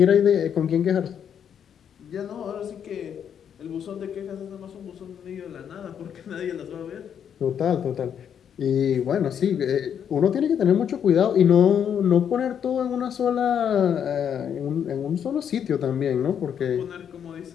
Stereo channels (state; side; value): quieter; right; 8.4 dB